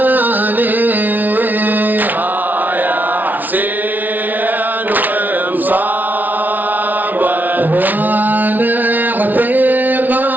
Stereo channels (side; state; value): left; late; 0.082 ms